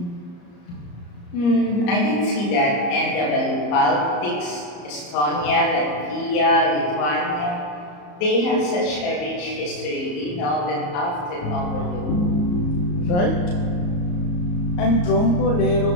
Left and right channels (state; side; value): late; right; 34 ms